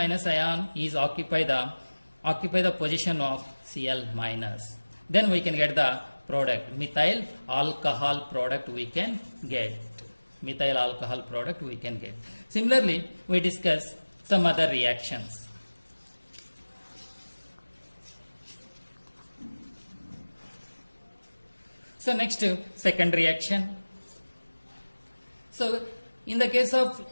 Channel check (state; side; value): inverted; both; correlation -1.00